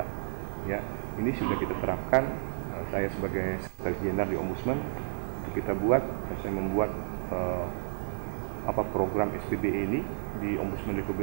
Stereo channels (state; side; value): silent; left; 57 dB below the other